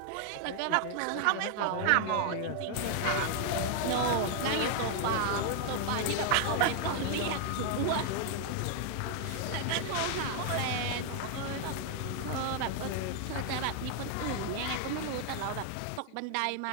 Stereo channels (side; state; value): both; different; correlation 0.00